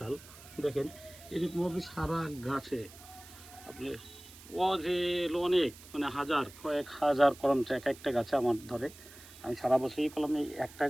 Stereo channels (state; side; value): noise; right; hiss, 19 dB below the sound